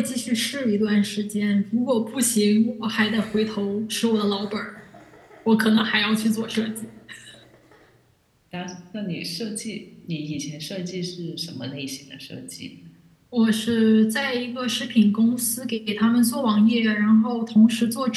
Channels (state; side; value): identical; both; correlation 1.00